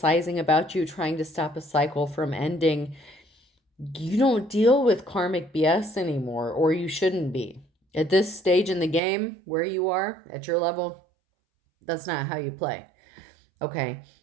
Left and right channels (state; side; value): drops out; left; at 9.0 s